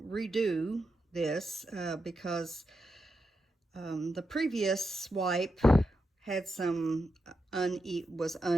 redo this because the previous swipe had some was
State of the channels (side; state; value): both; normal; correlation 0.86